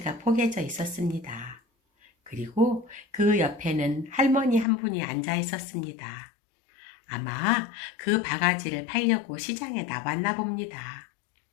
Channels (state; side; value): drops out; right; at 4.7 s